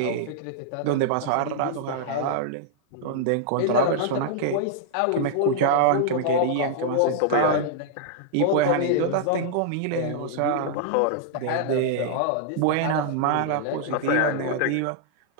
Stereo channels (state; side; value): different; both; correlation -0.01